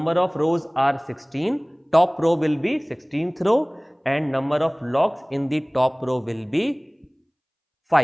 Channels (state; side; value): identical; both; correlation 1.00